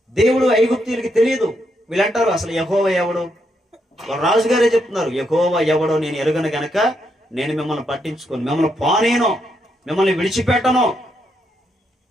దేవుడు ఐగుప్తీయులకి తెలియదు. వీళ్ళంటారు అసలు యెహోవా ఎవడు? రాజుగారే చెప్తున్నారు, యెహోవా ఎవడో నేను ఎరుగను గనక నేను మిమ్మల్ని పట్టించుకోను, మిమ్మల్ని పోనేను, మిమ్మల్ని విడిచిపెట్టను.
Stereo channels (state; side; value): normal; both; correlation 0.79